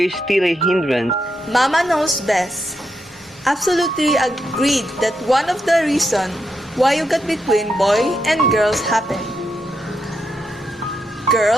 is still a hindrance? Mama knows best. Absolutely agreed that one of the reasons why you got between boy and girls happened.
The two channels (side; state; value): both; normal; correlation 0.82